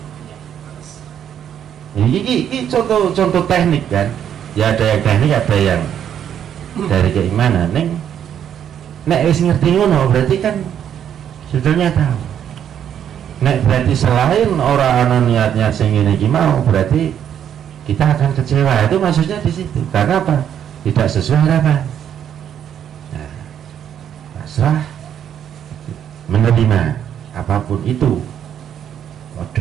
Iki contoh teknik kan. Ya ada yang teknik, ada yang dari keimanan. Nek wis ngerti ngono berarti kan sebetulnya tahu. Nek berarti selain orang ana niatnya sing ngene iki mau, berarti kita akan kecewa. Itu maksudnya di situ. Karena apa? Tidak sesuai harapan. Nah, pasrah, menerima apapun itu.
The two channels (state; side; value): quieter; left; 9.3 dB